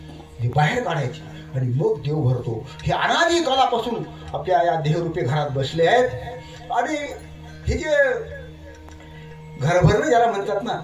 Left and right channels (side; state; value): both; identical; correlation 1.00